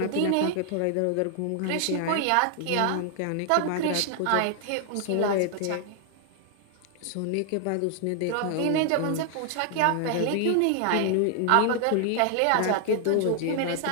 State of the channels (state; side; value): different; both; correlation 0.00